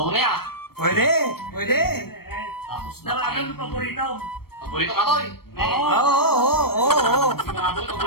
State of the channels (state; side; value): late; right; 0.95 ms